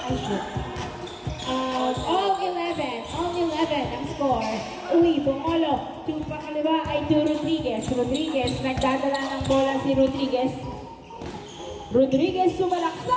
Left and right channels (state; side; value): identical; both; correlation 1.00